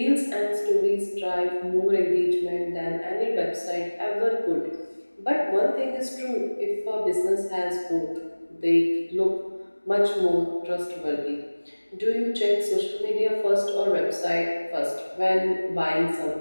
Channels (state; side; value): inverted; both; correlation -1.00